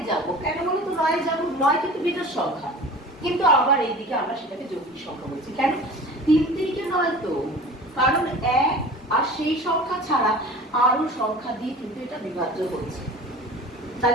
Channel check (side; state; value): both; normal; correlation 0.40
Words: যাব। কেন বলো তো 9 যাব? 9 কিন্তু বিজোড় সংখ্যা, কিন্তু আবার এইদিকে আমরা সেটাকে যৌগিক সংখ্যা বলছি। কেন? 3 3 কে 9 তো, কারণ 1 আর সেই সংখ্যা ছাড়া আরো সংখ্যা দিয়ে কিন্তু এটা বিভাজ্য হচ্ছে।